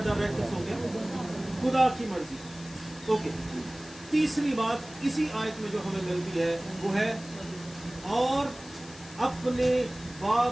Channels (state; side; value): noise; left; hiss, 18 dB below the sound